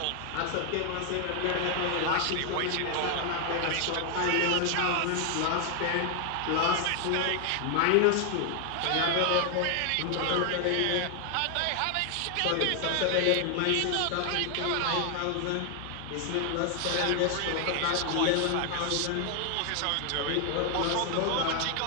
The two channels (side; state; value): both; different; correlation 0.00